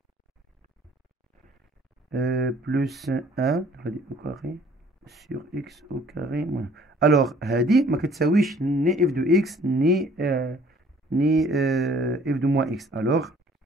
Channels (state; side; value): normal; both; correlation 0.56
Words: 1 au carré sur x au carré moins. Alors, هذه ما كتساويش ni f de x ni f de moins x. Alors,